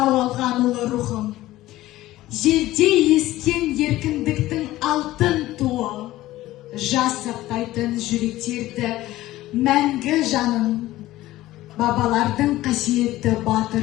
алған ұлы рухым. Желде ескен еркіндіктің алтын туы. Жас сақтайтын жүректерді мәңгі жаным. Бабалардың қасиетті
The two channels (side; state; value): right; quieter; 16.2 dB